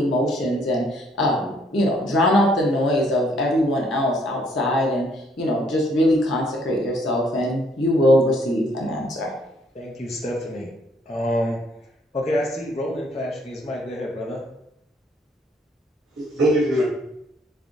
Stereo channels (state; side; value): normal; both; correlation 0.66